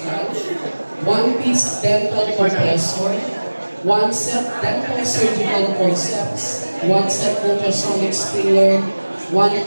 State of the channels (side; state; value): both; inverted; correlation -1.00